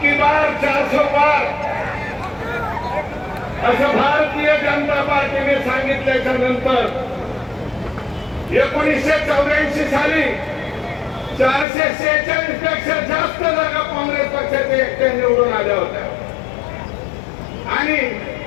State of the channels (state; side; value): drops out; right; at 11.7 s